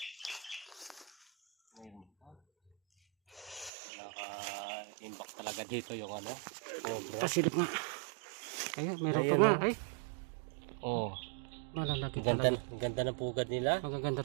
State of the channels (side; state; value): left; drops out; at 3.7 s